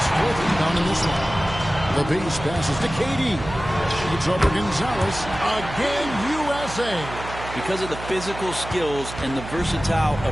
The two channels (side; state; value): right; noise; hum, 11 dB below the sound